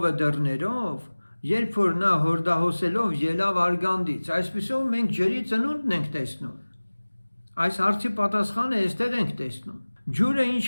դռներով, երբ որ նա հորդահոսելով ելավ Արգանդից, այսպիսով մենք ջրի ծնունդն ենք տեսնում։ Այս հարցի պատասխանը այստեղ ենք տեսնում։ Ջուրը ինչ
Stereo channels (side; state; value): both; inverted; correlation -1.00